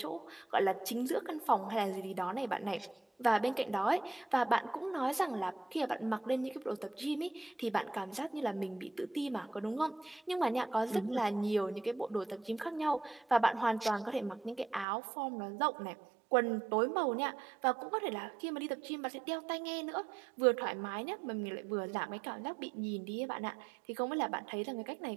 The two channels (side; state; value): left; drops out; at 14.9 s